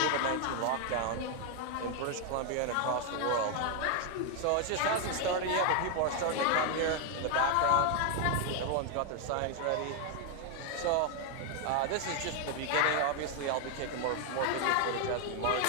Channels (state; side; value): different; both; correlation 0.00